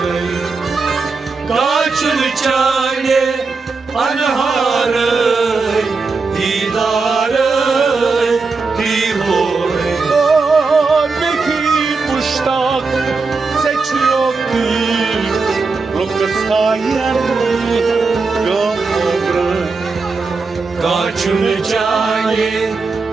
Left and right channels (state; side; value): quieter; left; 4.3 dB